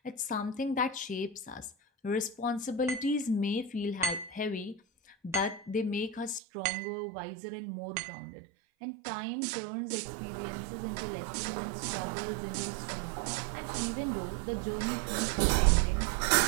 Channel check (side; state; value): left; drops out; at 6.4 s